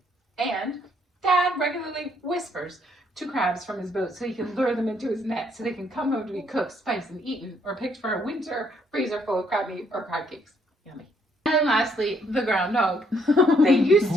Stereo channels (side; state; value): both; normal; correlation 0.69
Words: And Dad regularly whispers to crabs from his boat so he can lure them into his net so they can come home to be cooked, spiced, and eaten, or picked for a winter freezer full of crab meat or crab cakes. Yummy. And lastly, the groundhog. They used